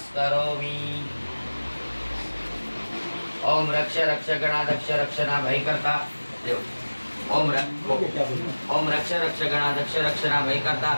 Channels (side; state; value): both; inverted; correlation -1.00